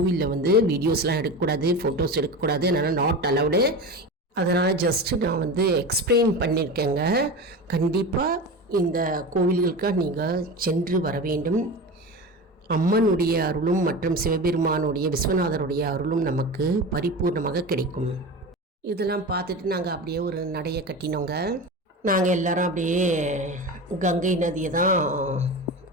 வீடியோஸ்லாம் எடுக்கக்கூடாது, ஃபோட்டோஸ் எடுக்கக்கூடாது, அதனால் நாட் அலவுடு. அதனால் ஜஸ்ட்டு நான் எக்ஸ்பிளைன் பண்ணியிருக்கேங்க. கண்டிப்பாக இந்த கோவில்களுக்காக நீங்கள் சென்று வர வேண்டும். அம்மனுடைய அருளும் மற்றும் சிவபெருமானுடைய விஸ்வநாதருடைய அருளும் நமக்கு பரிபூர்ணமாக கிடைக்கும். இதெல்லாம் பார்த்துட்டு நாங்கள் அப்படியே ஒரு நடையை கட்டினோங்க. நாங்கள் எல்லாரும் அப்படியே கங்கை நதியை தான்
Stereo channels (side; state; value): both; normal; correlation 0.27